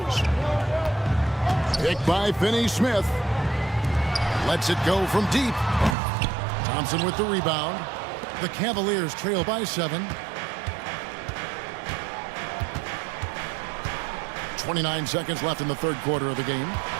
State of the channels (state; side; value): drops out; left; at 6.0 s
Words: Picked by Finney-Smith. Lets it go from deep. Thompson with the rebound. The Cavaliers trail by 7. 29 seconds left in the third quarter of the game.